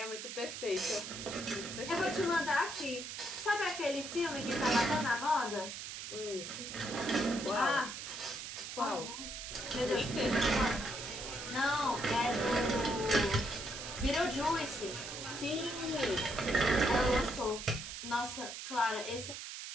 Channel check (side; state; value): right; noise; hiss, 8 dB below the sound